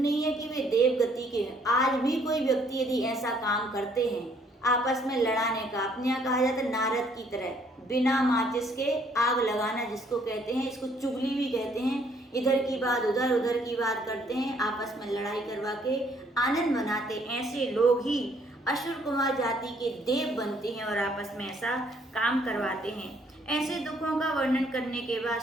है कि वे देव गति के हैं, आज भी कोई व्यक्ति यदि ऐसा काम करते हैं आपस में लड़ाने का, अपने यहाँ कहा जाता है नारद की तरह बिना माचिस के आग लगाना जिसको कहते हैं, इसको चुगली भी कहते हैं, इधर की बात उधर उधर की बात करते हैं, आपस में लड़ाई करवा के आनंद मनाते, ऐसे लोग ही असुर कुमार जाति के देव बनते हैं और आपस में ऐसा काम करवाते हैं। ऐसे दुखों का वर्णन करने के बाद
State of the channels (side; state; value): both; normal; correlation 0.65